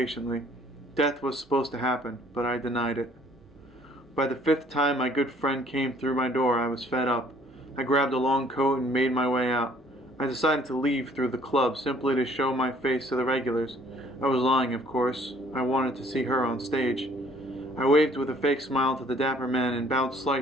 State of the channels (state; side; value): normal; both; correlation 0.58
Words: Death was supposed to happen, but I denied it. By the fifth time my good friend came through my door, I was fed up. I grabbed a long coat and made my way out. I decided to leave through the club simply to show my face to the regulars. I was lying, of course. I wanted to see her on stage. I waved with a fake smile to the dapper man and bowed